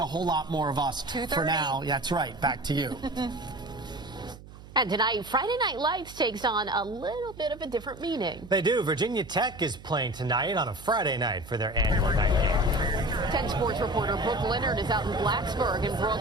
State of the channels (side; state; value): right; noise; hum, 18 dB below the sound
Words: whole lot more of us. 2:30. For now, yeah, that's right. Back to you. And tonight, Friday Night Lights takes on a little bit of a different meaning. They do. Virginia Tech is playing tonight on a Friday night for their annual night game. 10 Sports reporter Brooke Leonard is out in Blacksburg. And Brooke,